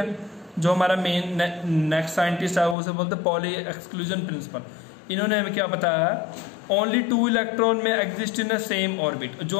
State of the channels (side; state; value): right; drops out; at 2.8 s